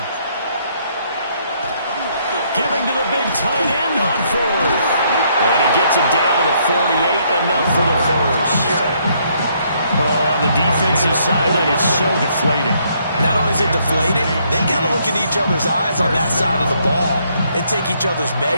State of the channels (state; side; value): inverted; both; correlation -0.70